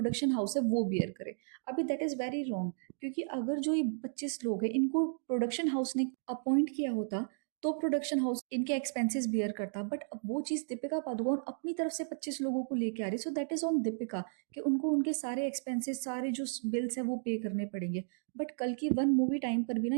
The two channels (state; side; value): silent; left; digital silence